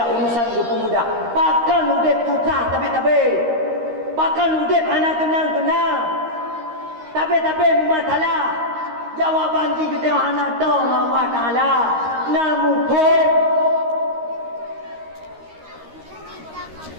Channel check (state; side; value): late; left; 13 ms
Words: urusan gepu mudah. Pakan udep susah tapi pakan udep anak tenang tapi masalah. Jawaban kita yang anak tahu Allah Ta'ala namun kok